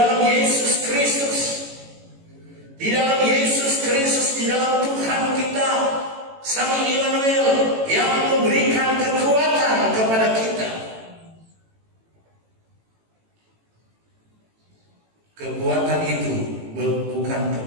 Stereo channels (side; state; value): left; late; 18 ms